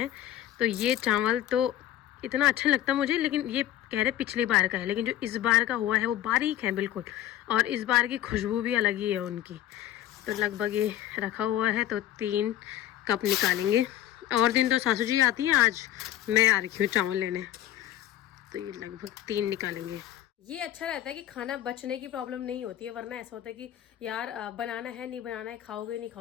तो ये चावल तो इतना अच्छा लगता मुझे, लेकिन ये कह रहे पिछली बार का है, लेकिन जो इस बार का हुआ है वो बारीक है बिल्कुल, और इस बार की खुशबू भी अलग ही है उनकी। तो लगभग ये रखा हुआ है, तो 3 कप निकालेंगे। और दिन तो सासू जी आती हैं, आज मैं आ रही हूँ चावल लेने, तो ये लगभग 3 निकालेंगे। ये अच्छा रहता है कि खाना बचने की प्रॉब्लम नहीं होती है, वरना ऐसा होता है कि यार बनाना है नहीं बनाना है, खाओगे नहीं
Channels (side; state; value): right; quieter; 12.5 dB